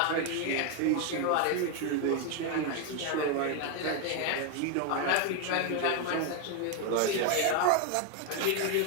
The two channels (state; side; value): different; both; correlation 0.01